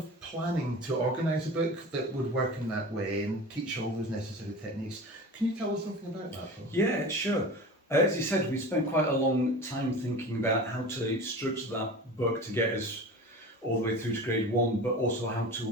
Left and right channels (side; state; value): both; normal; correlation 0.34